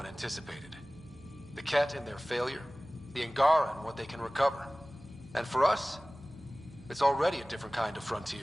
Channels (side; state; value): right; noise; hum, 23 dB below the sound